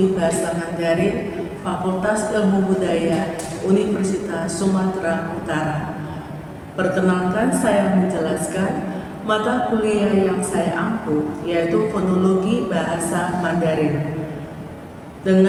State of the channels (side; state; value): both; identical; correlation 1.00